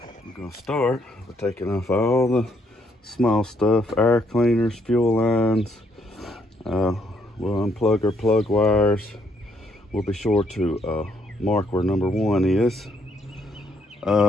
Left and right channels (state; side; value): normal; both; correlation 0.72